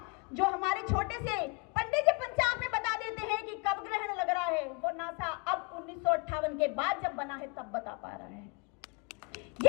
जो हमारे छोटे से पंडित जी पंचांग में बता देते हैं कि कब ग्रहण लग रहा है, वो नासा अब 1958 के बाद जब बना है तब बता पा रहा है।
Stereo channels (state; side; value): quieter; right; 30.7 dB